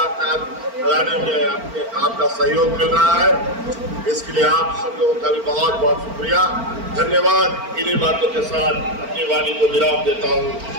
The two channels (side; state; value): left; late; 4.4 ms